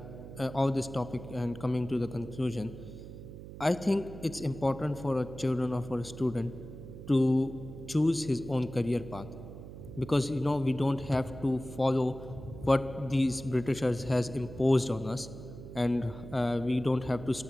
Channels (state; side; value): noise; right; hum, 13 dB below the sound